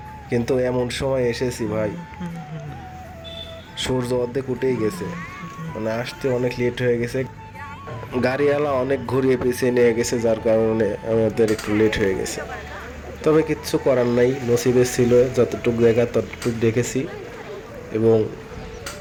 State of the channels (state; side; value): identical; both; correlation 1.00